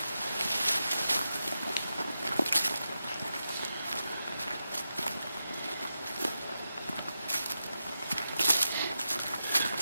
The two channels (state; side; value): inverted; both; correlation -0.89